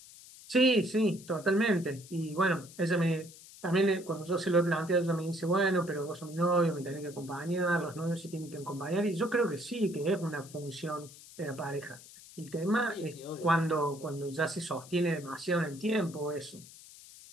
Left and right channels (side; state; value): left; noise; hiss, 19 dB below the sound